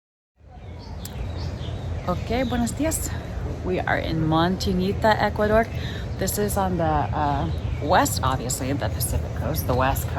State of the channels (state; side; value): identical; both; correlation 1.00